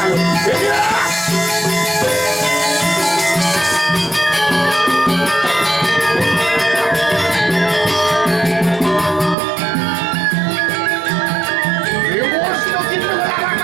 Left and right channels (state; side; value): drops out; left; at 9.3 s